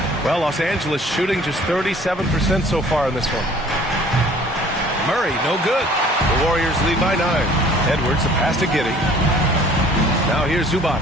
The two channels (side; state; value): both; normal; correlation 0.53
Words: Well, Los Angeles shooting just 37% so far in this one. Murray, no good. The Warriors lead by 9. Edwards, the pass to Giddey. Now here's Zubac.